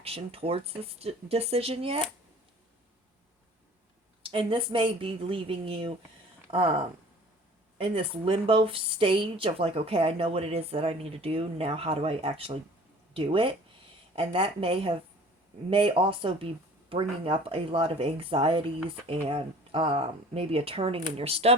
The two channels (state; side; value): normal; both; correlation 0.47